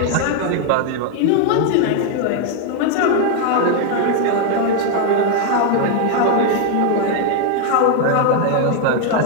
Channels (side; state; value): both; different; correlation 0.00